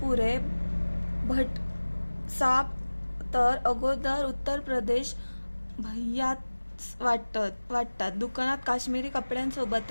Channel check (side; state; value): both; inverted; correlation -1.00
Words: पुरे भट साब तर अगोदर उत्तर प्रदेश भैयाच वाटतात. दुकानात काश्मीरी